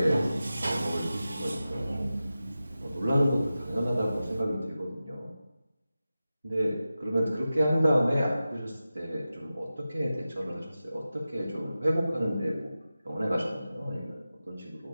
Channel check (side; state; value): both; inverted; correlation -0.94